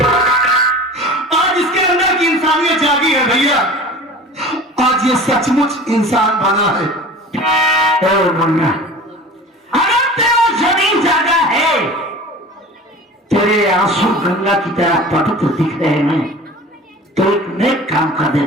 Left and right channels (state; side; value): normal; both; correlation 0.39